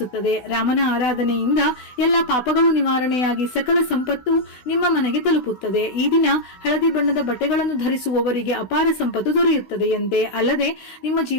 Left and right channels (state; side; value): late; right; 16 ms